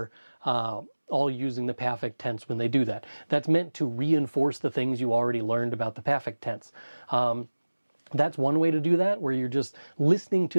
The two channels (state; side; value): inverted; both; correlation -1.00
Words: all using the perfect tense when they do that. That's meant to reinforce the things you already learned about the perfect tense. That's one way to do that, where you're just listening